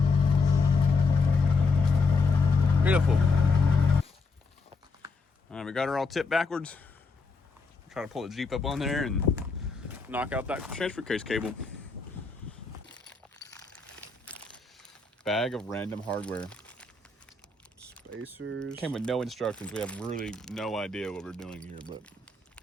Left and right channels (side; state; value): right; quieter; 4.0 dB